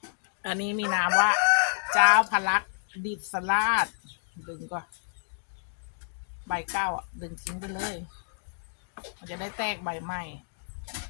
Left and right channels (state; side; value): silent; right; digital silence